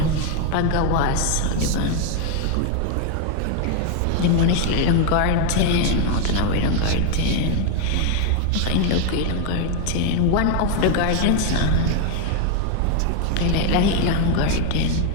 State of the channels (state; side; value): different; both; correlation 0.01